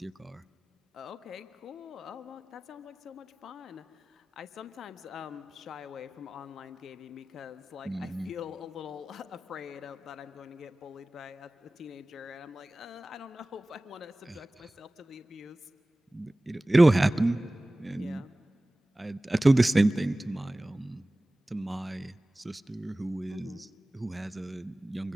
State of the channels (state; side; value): normal; both; correlation 0.98